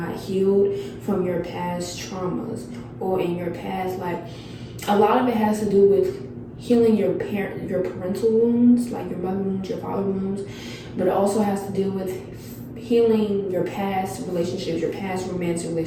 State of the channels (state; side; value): identical; both; correlation 1.00